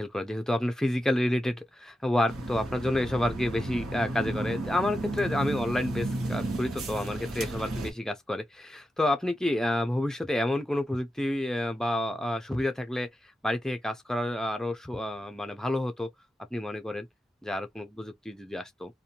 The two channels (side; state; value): both; normal; correlation 0.89